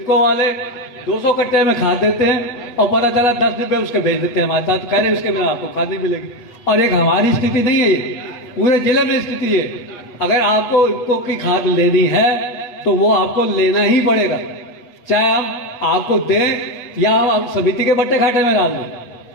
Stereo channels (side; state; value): right; late; 8.1 ms